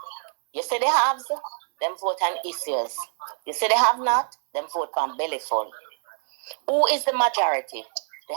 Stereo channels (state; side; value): silent; left; 62 dB below the other